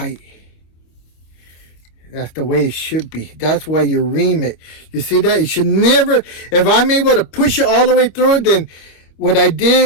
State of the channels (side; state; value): right; late; 25 ms